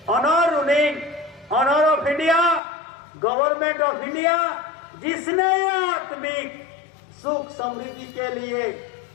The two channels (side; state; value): right; drops out; at 2.6 s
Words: honour ruling, honour of India, government of India, जिसने आत्मिक सुख समृद्धि के लिए